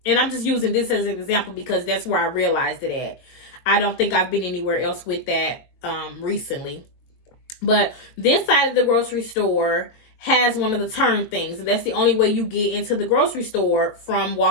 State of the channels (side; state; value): right; late; 22 ms